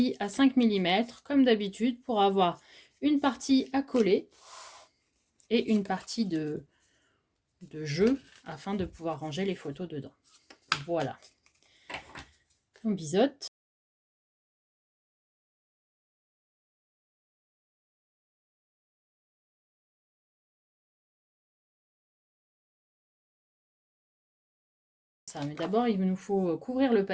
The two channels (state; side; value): identical; both; correlation 1.00